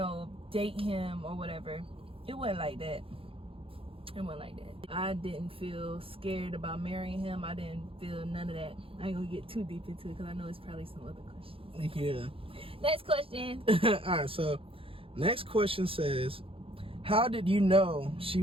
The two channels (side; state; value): left; late; 0.27 ms